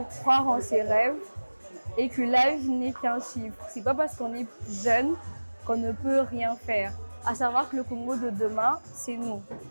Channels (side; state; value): both; inverted; correlation -1.00